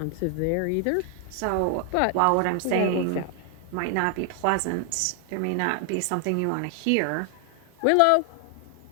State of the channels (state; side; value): different; both; correlation 0.00